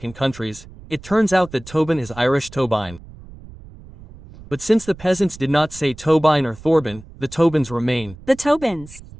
countries. It turns out that Tobin is Irish Tobine. But since the peasants did not say Tobine or Thorbin, the Tobins remain. The Tobins.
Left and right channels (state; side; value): noise; right; rumble, 19 dB below the sound